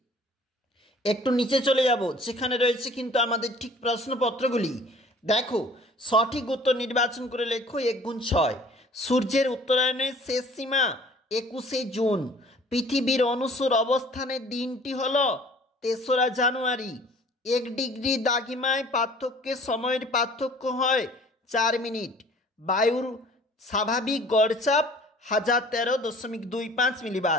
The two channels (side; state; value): both; normal; correlation 0.51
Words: একটু নিচে চলে যাব, যেখানে রয়েছে কিন্তু আমাদের ঠিক প্রশ্নপত্রগুলি। দেখো সঠিক উত্তর নির্বাচন করে লেখো 1×6। সূর্যের উত্তরায়ণের শেষ সীমা 21শে জুন। পৃথিবীর অনুসর অবস্থানের দিনটি হল 3রা জানুয়ারি। 1 ডিগ্রি দ্রাঘিমায় পার্থক্যের সময়ের পার্থক্য হয় 4 মিনিট। বায়ুর স্বাভাবিক গড়চাপ 1013.25